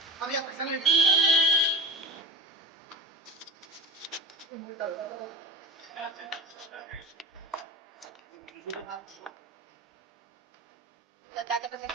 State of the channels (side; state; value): both; normal; correlation 0.31